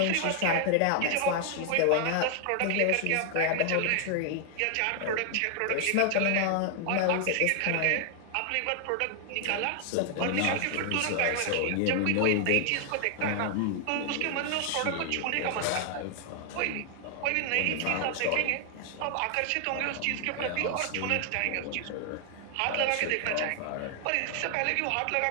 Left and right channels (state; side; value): different; both; correlation 0.00